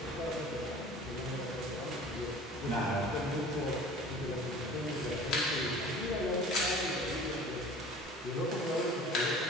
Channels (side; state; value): both; normal; correlation 0.44